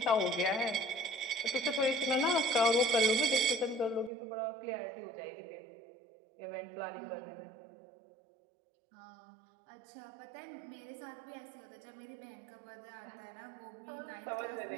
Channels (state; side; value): drops out; left; at 4.1 s